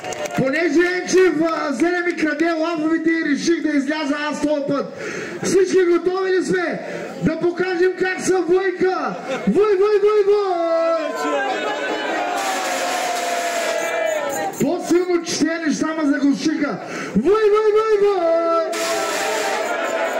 Понеже Енчев взе ми краде лафовете и реших да изляза аз този път. Всички готови ли сме? Да покажем как са войка! Вой! По-силно че тези неща ме заглушиха. Вой!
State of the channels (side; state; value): both; identical; correlation 1.00